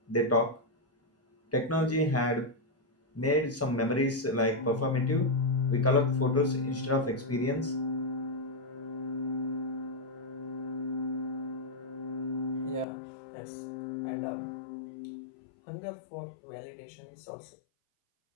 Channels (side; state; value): right; drops out; at 12.9 s